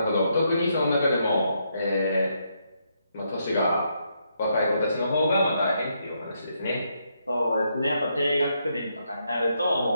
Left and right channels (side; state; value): both; inverted; correlation -0.78